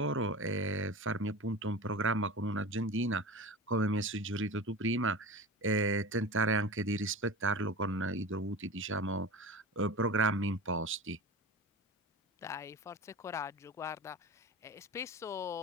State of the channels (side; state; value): both; normal; correlation 0.31